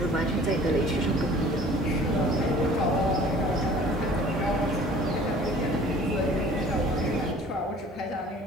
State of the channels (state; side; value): normal; both; correlation 0.49